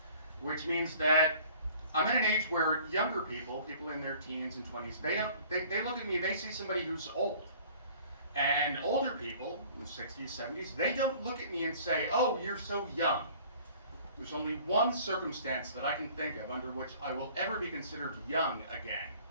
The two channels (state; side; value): inverted; both; correlation -0.51